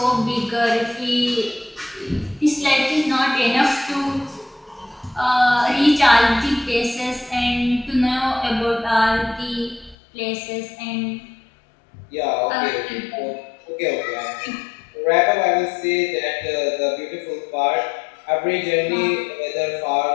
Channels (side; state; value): right; drops out; at 10.0 s